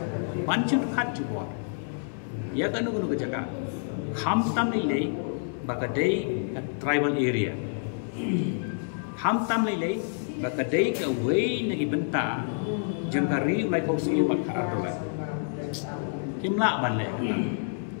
panchin khat jubor ya ka no ka jaga kham tam ni le ba ka dei ka tribal area kham tam ni le ba ka dei ka wei na gi benta jang ka ri lai ko si ba ka arolai kimla ban le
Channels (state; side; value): silent; right; digital silence